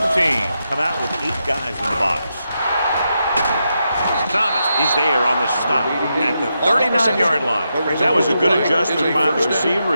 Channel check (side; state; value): both; inverted; correlation -0.85